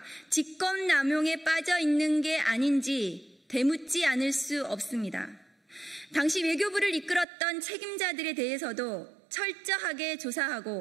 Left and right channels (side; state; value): left; drops out; at 7.2 s